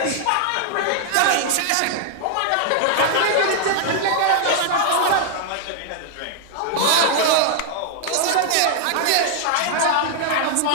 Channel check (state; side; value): different; both; correlation -0.01